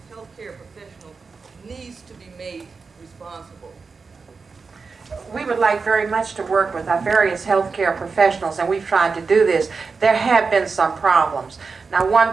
healthcare professional needs to be made responsible. We would like very much to work with our various healthcare professionals, and we've tried to do this. There have been some problems. Now, one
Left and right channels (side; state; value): left; quieter; 4.7 dB